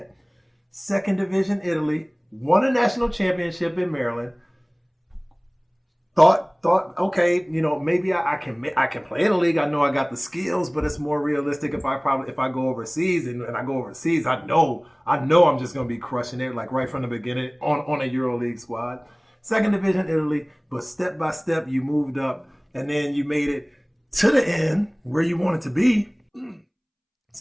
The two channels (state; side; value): identical; both; correlation 1.00